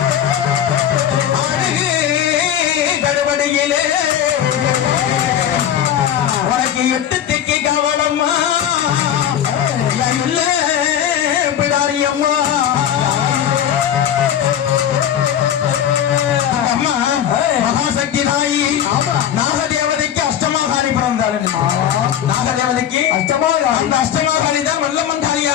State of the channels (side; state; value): right; quieter; 10.0 dB